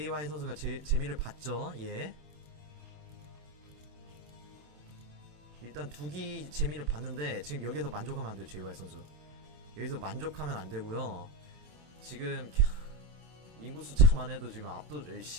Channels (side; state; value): left; late; 27 ms